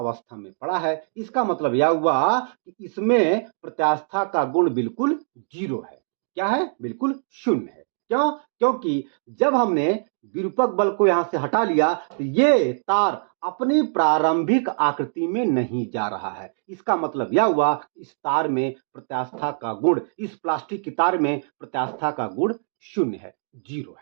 में पड़ा है। इसका मतलब यह हुआ कि इसमें प्रत्यास्था का गुण बिल्कुल जीरो है। क्या है? बिल्कुल शून्य है। क्यों? क्योंकि जब हमने विरूपक बल को यहां से हटा लिया तो ये तार अपनी प्रारंभिक आकृति में नहीं जा रहा है। इसका मतलब यह हुआ इस तार में प्रत्यास्था का गुण, इस प्लास्टिक की तार में प्रत्यास्था का गुण शून्य है, जीरो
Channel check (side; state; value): left; silent; digital silence